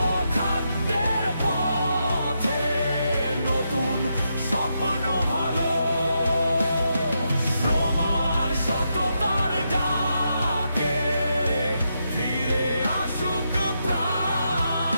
খাদ্যের পথে নতুন স্বপ্ন ভালো। শ্রম আর সততার ডাকে ফিরে আসুক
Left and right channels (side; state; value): both; inverted; correlation -0.82